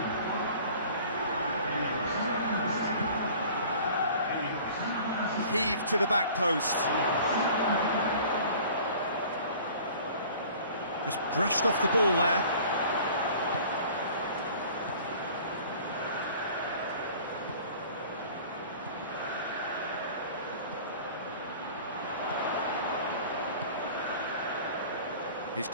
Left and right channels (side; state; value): both; inverted; correlation -0.47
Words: Heave to the back post. Just brushed off the ball there. He's